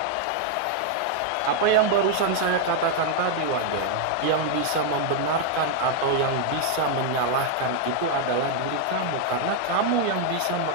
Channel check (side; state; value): both; different; correlation -0.01